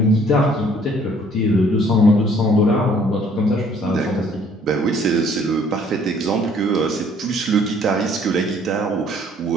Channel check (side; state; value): both; normal; correlation 0.59